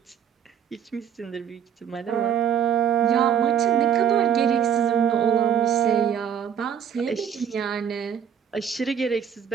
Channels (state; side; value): quieter; left; 8.4 dB